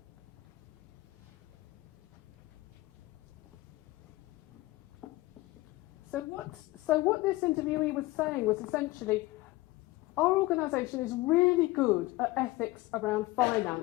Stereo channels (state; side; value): quieter; right; 19.7 dB